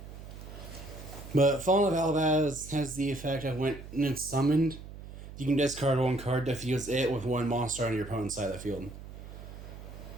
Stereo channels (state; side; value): noise; right; hum, 13 dB below the sound